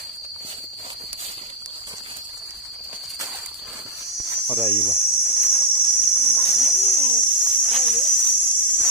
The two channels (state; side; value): normal; both; correlation -0.01